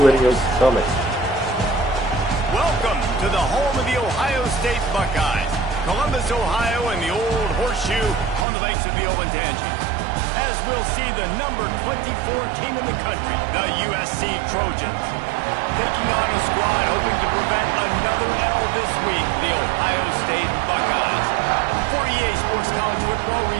it in your course. stomach. Welcome to the home of the Ohio State Buckeyes, Columbus, Ohio, and the old horseshoe on the banks of the Olentangy. As we'll see the number 24 team in the country, the USC Trojans, taking on a squad hoping to prevent another L this week, the Ohio State Buckeyes. For EA Sports College Football,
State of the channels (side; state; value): left; drops out; at 8.5 s